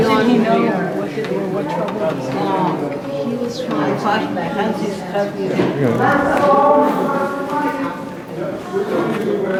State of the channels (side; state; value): both; identical; correlation 1.00